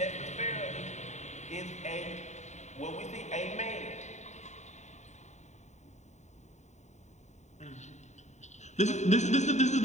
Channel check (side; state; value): right; late; 0.34 ms